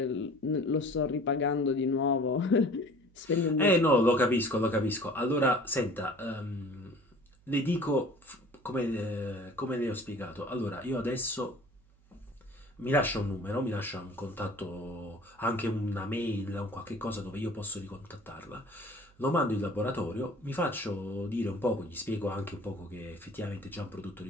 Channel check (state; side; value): noise; right; hum, 29 dB below the sound